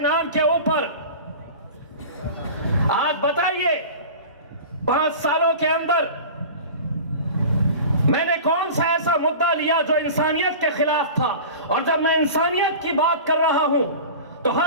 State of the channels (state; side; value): inverted; both; correlation -0.35